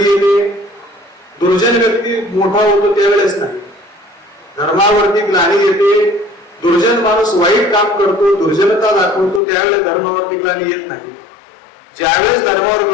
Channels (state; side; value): drops out; right; at 9.4 s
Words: येते? दुर्जन व्यक्ती मोठा होतो त्यावेळेस नाही. धर्मावरती ग्लानी येते, दुर्जन माणूस वाईट काम करतो, दुर्जनता दाखवतो, त्यावेळेस धर्मावरती ग्लानी येत नाही. ज्यावेळेस धर्मावर